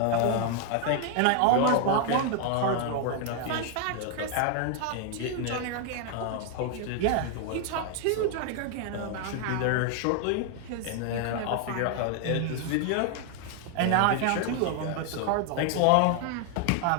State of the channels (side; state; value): both; different; correlation 0.00